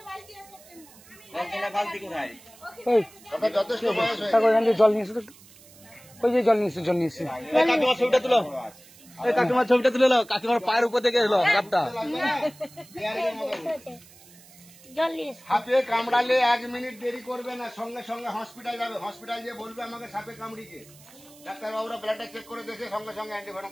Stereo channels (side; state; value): right; noise; hiss, 23 dB below the sound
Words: কলতলা বালতি কোথায়? ওই আপনার যথেষ্ট বয়স হয়ে কাকু এখান থেকে জল নিয়ে এসো তো একটু। ওই যে জল নিয়ে এসো জল নিয়ে এসো। কাকিমার ছবিটা তুলো, এই কাকিমার ছবিটা তুলে নাও, কাকিমার পায়ের উপর থেকে এলো সাপটা। জল নিয়ে এসো। সাপে কামড়ালে 1 মিনিট দেরি করবে না, সঙ্গে সঙ্গে হসপিটাল যাবে। হসপিটাল গিয়ে বলবে আমাকে সাপে কামড়িছে। ডাক্তারবাবুরা ব্লাডটা চেক করে দেখে সঙ্গে সঙ্গে অ্যান্টিভেনম